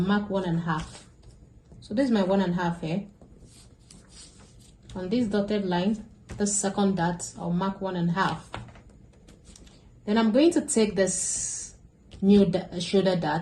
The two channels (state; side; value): identical; both; correlation 1.00